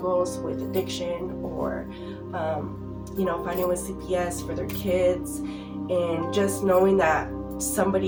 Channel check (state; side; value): identical; both; correlation 1.00